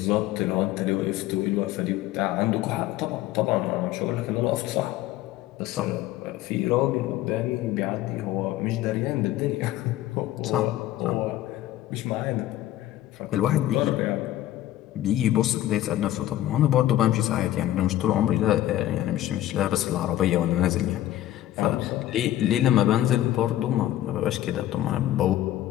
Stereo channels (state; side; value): quieter; right; 14.0 dB